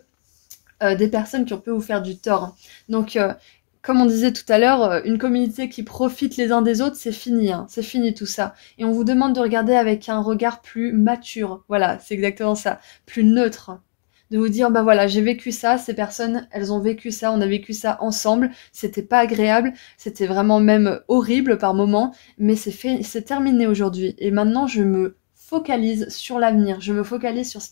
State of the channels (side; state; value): right; silent; digital silence